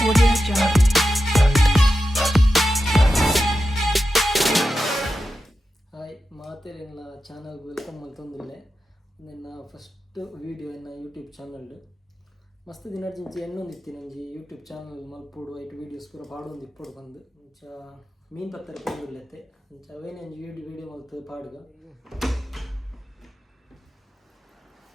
ಹಾಯ್ ಮಾತೇರಿನ ಚಾನಲ್ಗೆ ವೆಲ್ಕಮ್ ಮಲ್ತೊಂದಿಲ್ಲೆ. ನನ್ನ ಫಸ್ಟ್ ವೀಡಿಯೋ ಎನ್ನ ಯೂಟ್ಯೂಬ್ ಚಾನಲ್ ಮಸ್ತ್ ದಿನರ್ಜಿಂಚಿ ಎನ್ನೊಂದಿತ್ತಿ ನಂಜಿ ಯೂಟ್ಯೂಬ್ ಚಾನಲ್ ಮಲ್ಪೋಡು ಐಟ್ ವೀಡಿಯೋಸ್ ಪೂರ ಪಾಡೊಂದು ಇಪ್ಪೊಡು ಬಂದು ಇಂಚ ಮೀನು ಪತ್ತರ ಪೋಂದುಲ್ಲೆತ್ತೆ ಇಂಚ ಅವೇನೆ ಒಂಜಿ ವೀಡಿಯೋ ಮಲ್ತು ಪಾಡ್ಗ.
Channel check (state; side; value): normal; both; correlation 0.91